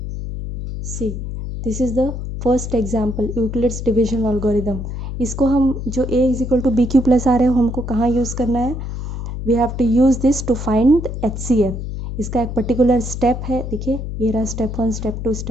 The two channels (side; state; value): left; noise; hum, 6 dB below the sound